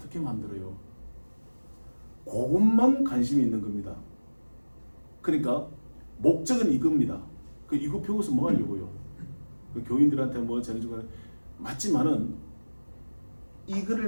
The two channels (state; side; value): inverted; both; correlation -1.00